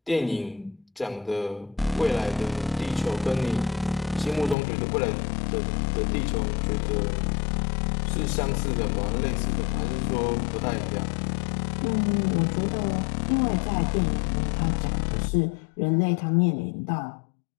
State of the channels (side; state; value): right; drops out; at 4.5 s